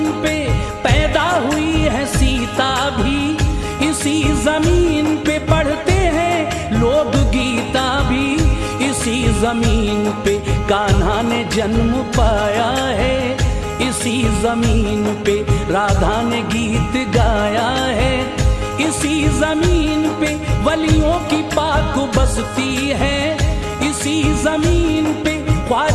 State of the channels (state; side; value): identical; both; correlation 1.00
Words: पे पैदा हुई है सीता भी, इसी जमीन पे पढ़ते हैं लोग गीता भी, इसी जमीन पे कान्हा ने जन्म पाया है, इसी जमीन पे राधा ने गीत गाया है, इसी जमीन पे वलियों की पाक बसती है, इसी जमीन पे